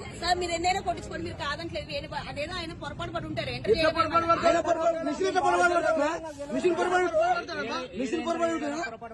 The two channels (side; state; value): both; identical; correlation 1.00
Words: మీరు ఎన్నైనా కొట్టించుకోండి, మీరు కాదంటలేదు. అదేదో ఆయన పొరపాటు పడి ఉంటారు.